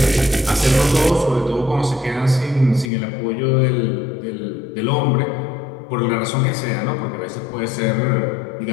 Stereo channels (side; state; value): right; drops out; at 2.9 s